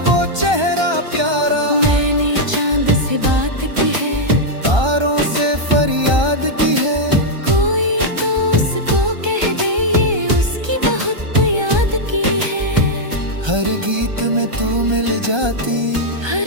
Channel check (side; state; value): left; late; 1.3 ms